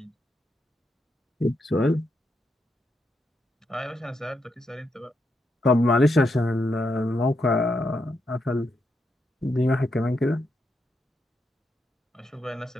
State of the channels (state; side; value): normal; both; correlation 0.81